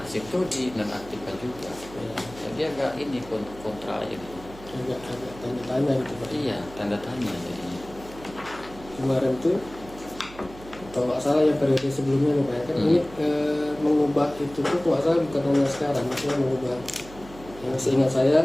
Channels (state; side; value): noise; right; hum, 18 dB below the sound